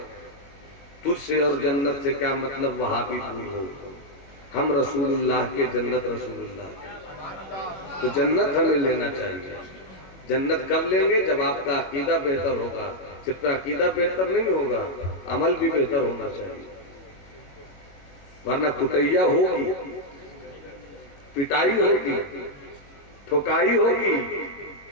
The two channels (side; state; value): right; late; 22 ms